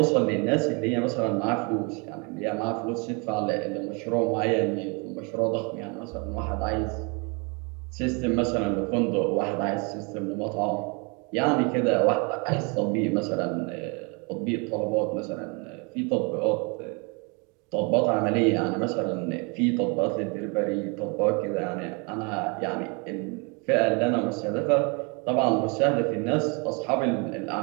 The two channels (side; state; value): left; quieter; 32.1 dB